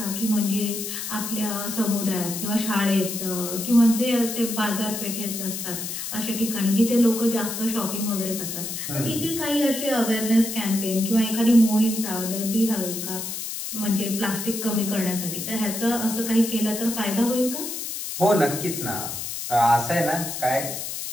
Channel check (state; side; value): noise; left; hiss, 6 dB below the sound